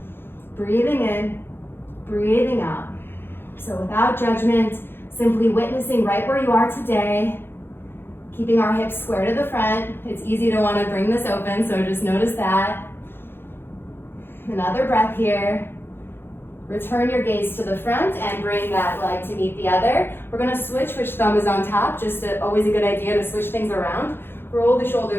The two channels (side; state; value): right; late; 0.10 ms